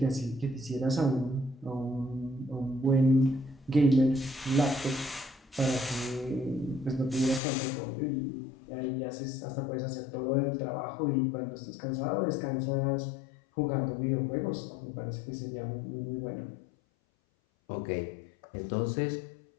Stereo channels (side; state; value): right; drops out; at 7.4 s